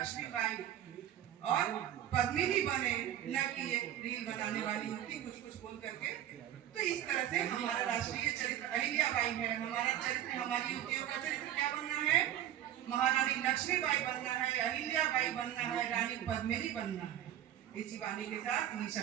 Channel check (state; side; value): quieter; left; 11.5 dB